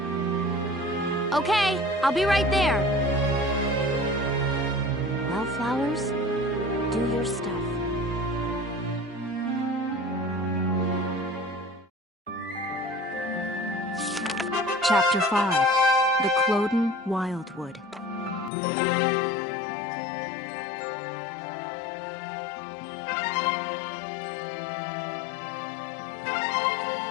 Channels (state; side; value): drops out; right; at 18.5 s